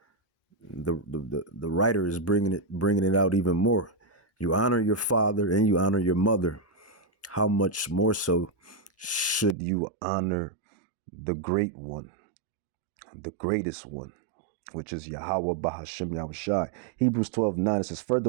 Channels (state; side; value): drops out; left; at 9.6 s